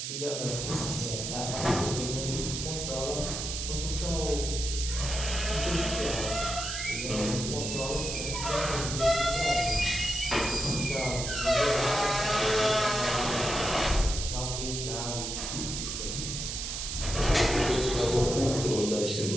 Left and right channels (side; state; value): right; noise; hiss, 4 dB below the sound